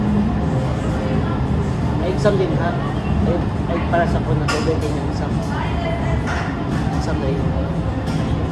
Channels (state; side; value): identical; both; correlation 1.00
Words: Ay, exam din ha. Ay para sa ko na tubig yung exam. Exam na yun.